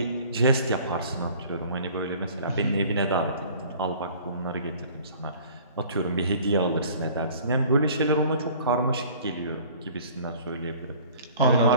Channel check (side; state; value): both; inverted; correlation -0.49